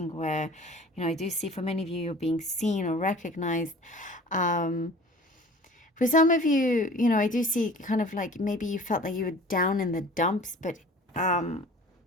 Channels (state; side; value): normal; both; correlation 0.45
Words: where, I do see for many of you, you're being seen or recognized. For some of you, I do see kind of like maybe you felt like you were down in the dumps, but